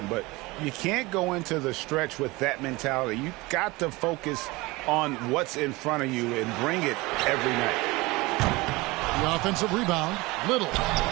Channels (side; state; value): left; quieter; 22.5 dB